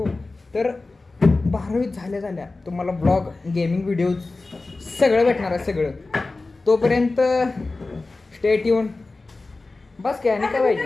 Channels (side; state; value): right; quieter; 3.4 dB